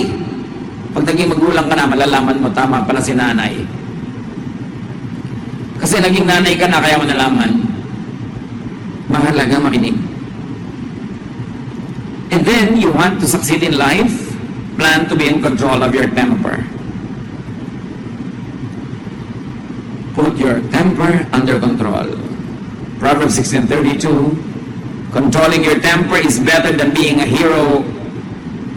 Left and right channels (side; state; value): both; identical; correlation 1.00